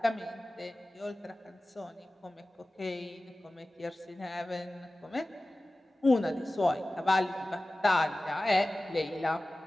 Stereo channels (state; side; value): normal; both; correlation 0.97